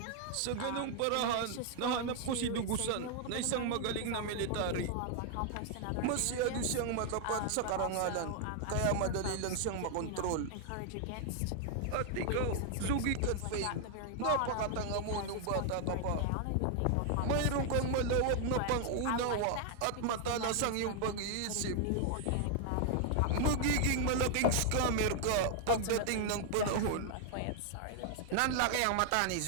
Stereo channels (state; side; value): different; both; correlation 0.00